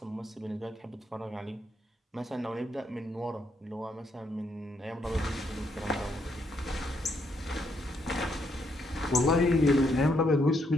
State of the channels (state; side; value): normal; both; correlation 0.75